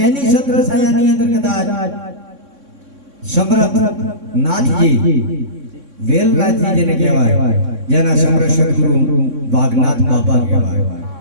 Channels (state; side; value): late; left; 3.6 ms